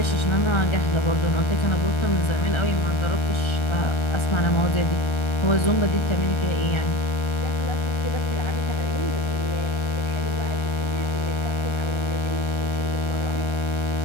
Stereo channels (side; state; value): right; late; 1.3 ms